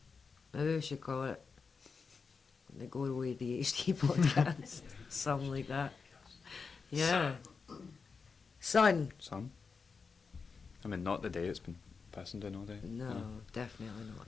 we should call it the GORO ADHD podcast. Something like that. Yeah. Sun. Some. I mean, not the day it's been pissing down all day. No, definitely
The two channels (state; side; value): quieter; right; 5.1 dB